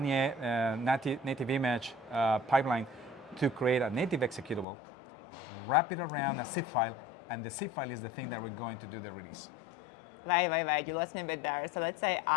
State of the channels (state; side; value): drops out; right; at 4.7 s